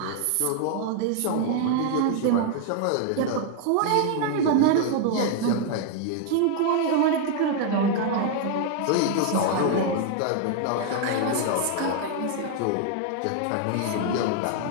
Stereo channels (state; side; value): different; both; correlation 0.00